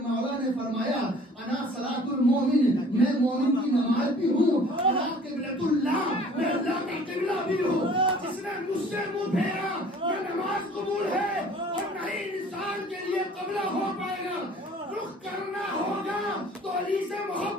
نے فرمایا انا صلاۃ المومن، میں مومن کی نماز بھی ہوں، انا قبلۃ اللہ، میں اللہ کا قبلہ بھی ہوں۔ جس نے مجھ سے منہ پھیرا یہ نماز قبول ہے، اور نہیں انسان کے لیے قبلہ ہو پائے گا۔ رخ کرنا ہوگا تو علی سے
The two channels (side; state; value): both; normal; correlation 0.51